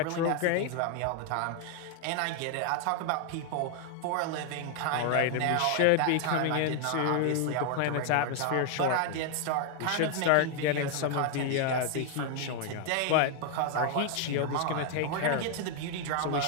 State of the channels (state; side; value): different; both; correlation 0.00